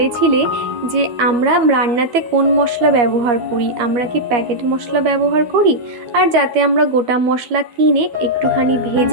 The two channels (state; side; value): late; left; 13 ms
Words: যে আমরা রান্নাতে কোন মশলা ব্যবহার করি, আমরা কি প্যাকেট মশলা ব্যবহার করি, আর যাতে আমরা গোটা মশলা কিনে একটুখানি